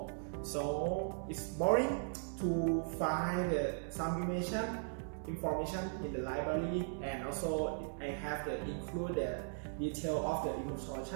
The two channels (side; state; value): left; silent; digital silence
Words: So it's boring to find some information in the library, and also I have to include the detail of the